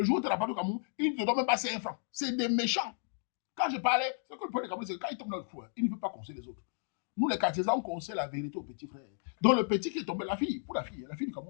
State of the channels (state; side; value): silent; right; digital silence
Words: jour où tu n'as pas de Cameroun, ils ne te donnent même pas 5 francs. C'est des méchants. Quand je parlais, ce que le problème des Camerounais, c'est que quand ils tombent dans le fou, il ne veut pas conseiller les autres. Nous, les quartiers, on conseille la vérité au petit frère. Donc, le petit qui est tombé, la fille du